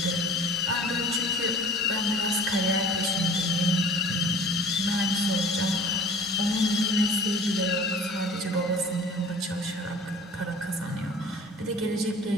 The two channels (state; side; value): normal; both; correlation 0.44